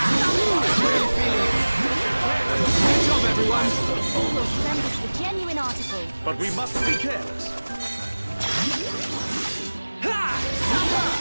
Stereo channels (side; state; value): both; inverted; correlation -1.00